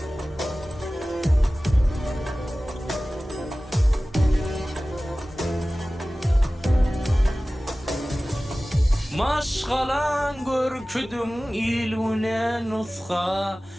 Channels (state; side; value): normal; both; correlation 0.97